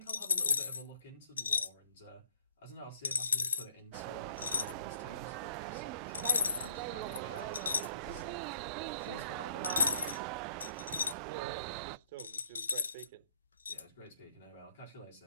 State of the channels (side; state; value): both; inverted; correlation -0.63